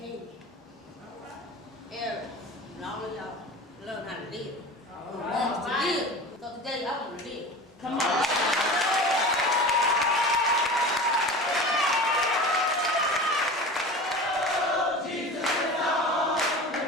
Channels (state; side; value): normal; both; correlation 0.34